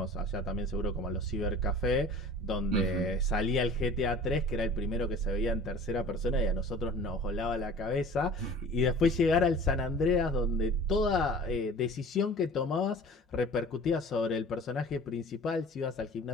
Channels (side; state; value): both; normal; correlation 0.44